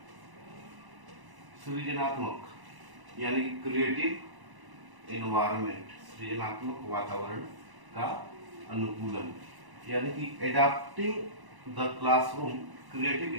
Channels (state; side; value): late; left; 1.0 ms